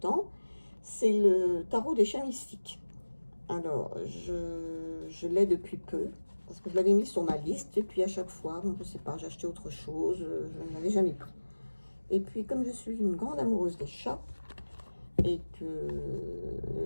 C'est le tarot des chats mystiques. Alors, je l'ai depuis peu, parce que je l'avais mis sur ma liste, et puis à chaque fois, bon, je sais pas, j'ai acheté autre chose, je ne l'avais jamais pris. Et puis, comme je suis une grande amoureuse des chats, et que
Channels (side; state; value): both; inverted; correlation -1.00